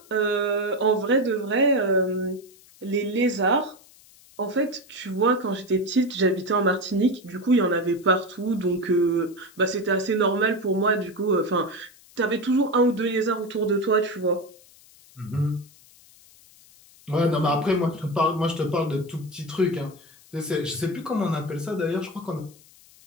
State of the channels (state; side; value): noise; left; hiss, 26 dB below the sound